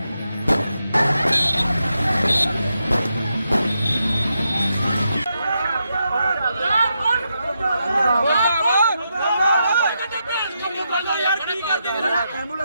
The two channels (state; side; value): inverted; both; correlation -0.84